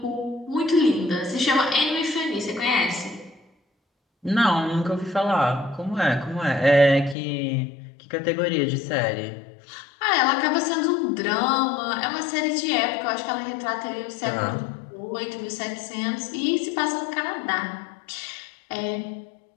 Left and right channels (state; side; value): drops out; right; at 7.2 s